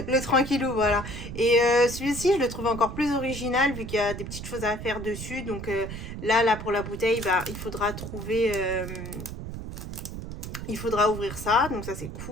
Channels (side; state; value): right; noise; rumble, 9 dB below the sound